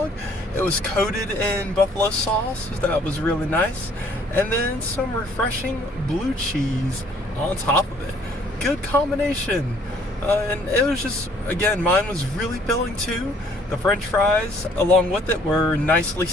It was coated in buffalo sauce. That was really nice. And then some refreshing blue cheese on top of it. Good combination. And it was just, again, mine was really filling too. The French fries, along with it, were nicely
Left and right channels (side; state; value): both; normal; correlation 0.60